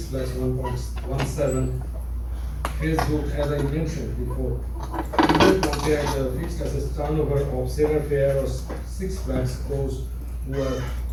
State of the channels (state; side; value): identical; both; correlation 1.00